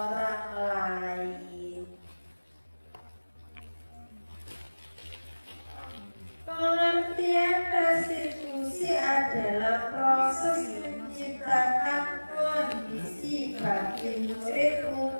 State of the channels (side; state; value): both; inverted; correlation -1.00